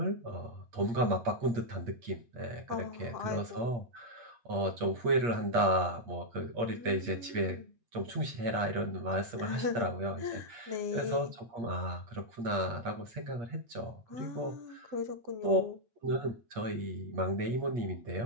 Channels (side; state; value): left; late; 8.5 ms